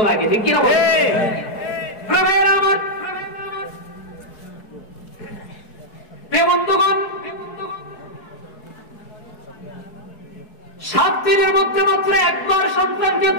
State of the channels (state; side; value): late; right; 4.7 ms